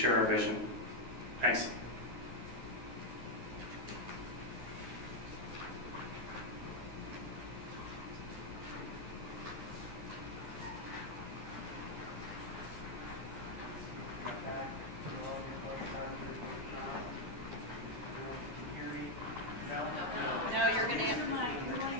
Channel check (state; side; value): late; left; 11 ms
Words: our vision. Thanks.